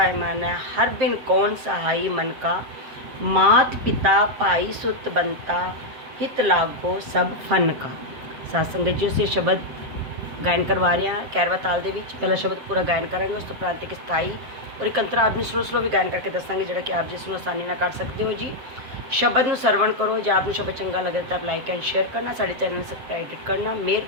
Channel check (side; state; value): left; late; 7.5 ms